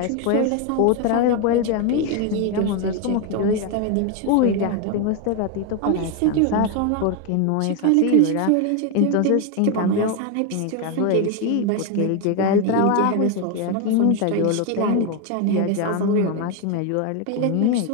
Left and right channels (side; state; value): both; different; correlation 0.01